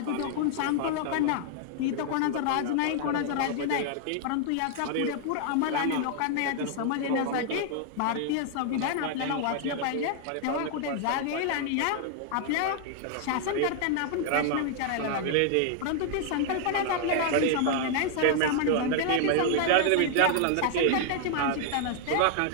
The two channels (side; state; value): both; different; correlation 0.00